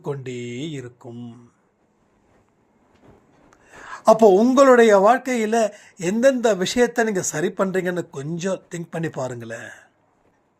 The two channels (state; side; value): identical; both; correlation 1.00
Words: கொண்டே இருக்கும். அப்போ உங்களுடைய வாழ்க்கையில் எந்தெந்த விஷயத்தை நீங்கள் சரி பண்ணுறீங்கன்னு கொஞ்சம் திங்க் பண்ணி பாருங்களேன்.